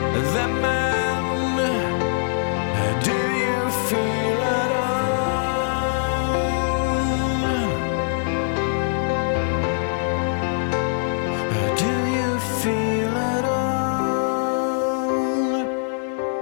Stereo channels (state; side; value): silent; right; digital silence